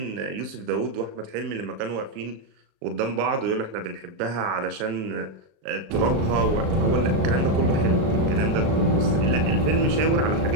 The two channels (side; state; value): left; late; 37 ms